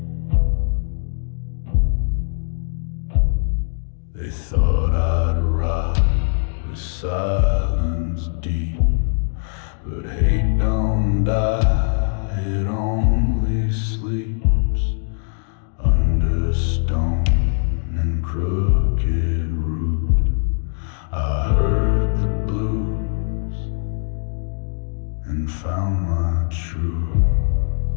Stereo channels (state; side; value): silent; right; digital silence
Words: They thought I'd rot with silence deep, but hate don't die, it only sleeps under stone and crooked root. I heard the blues and found my truth.